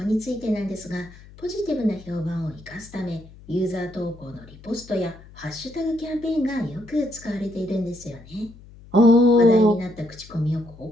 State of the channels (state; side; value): noise; left; hum, 21 dB below the sound